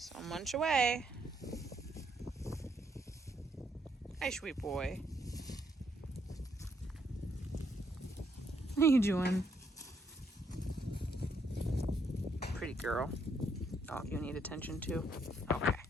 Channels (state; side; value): normal; both; correlation 0.73